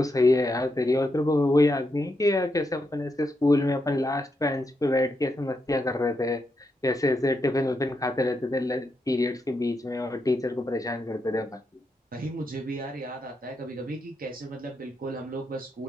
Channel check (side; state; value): both; normal; correlation 0.83